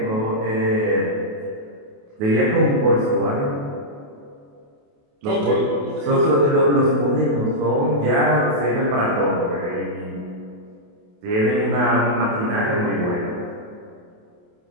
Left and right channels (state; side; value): late; left; 28 ms